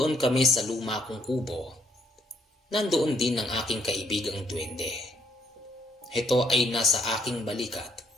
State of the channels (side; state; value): both; normal; correlation 0.70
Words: kami sa luma kong kubo, nandoon din ang aking kaibigang duwende. Ito ay nasa aking balikat,